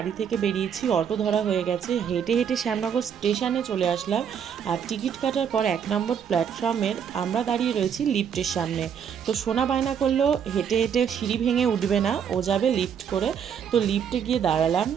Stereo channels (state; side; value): quieter; left; 7.9 dB